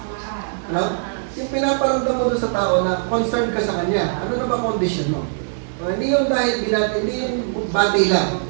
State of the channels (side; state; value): left; silent; digital silence